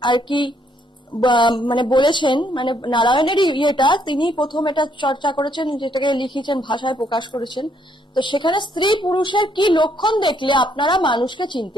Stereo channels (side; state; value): both; normal; correlation 0.71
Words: আর কি মানে বলেছেন, মানে নারায়ণেরই ইয়েটা তিনি প্রথম এটা চর্চা করেছেন, যেটাকে লিখেছেন ভাষায় প্রকাশ করেছেন। তো সেখানে স্ত্রী পুরুষের কি লক্ষণ দেখলে আপনারা মানুষকে